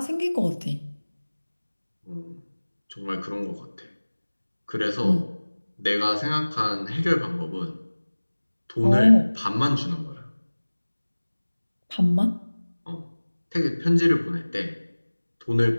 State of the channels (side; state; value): both; inverted; correlation -1.00